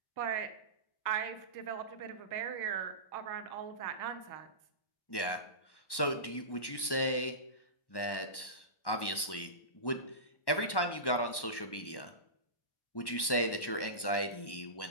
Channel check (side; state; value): right; late; 1.1 ms